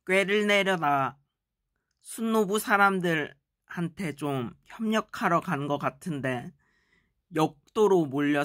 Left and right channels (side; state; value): both; identical; correlation 1.00